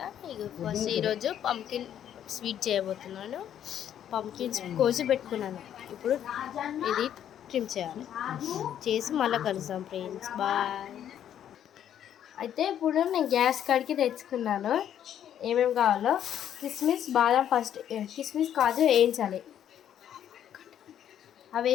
ఇక ఫస్ట్ ఈరోజు పంకిన్ స్వీట్ చేయబోతున్నాను. పంకిన్స్ కోసి పెట్టుకున్నాను. ఇప్పుడు ఇది ట్రిమ్ చేయాలి. చేసి మళ్ళీ కలుస్తాం ఫ్రెండ్స్. బాయ్. అయితే ఇప్పుడు నేను గ్యాస్ కాడికి తెచ్చుకున్నాను. ఏమేమి కావాలో కిస్మిస్, బాదం, ఫస్ట్ కిస్మిస్ కాజు వేయించాలి. అవి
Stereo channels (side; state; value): right; quieter; 10.1 dB